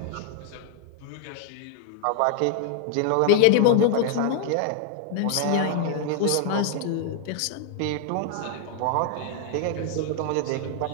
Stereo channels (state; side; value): different; both; correlation 0.00